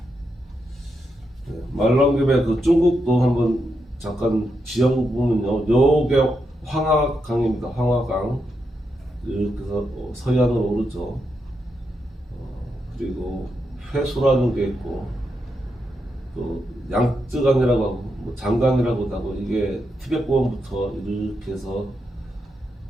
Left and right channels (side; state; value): both; normal; correlation 0.84